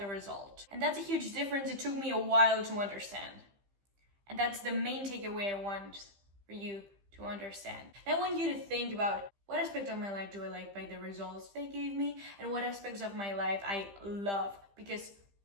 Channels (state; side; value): late; left; 15 ms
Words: result. And that's a huge difference. It took me a while to understand. And that's the main takeaway I want for you to understand. I want you to think about, what aspect of my life do I like by the results they gave me, and what aspects of my life I love because